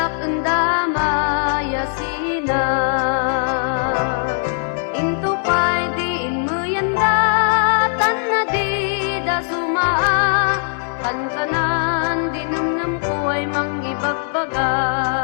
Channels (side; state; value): right; silent; digital silence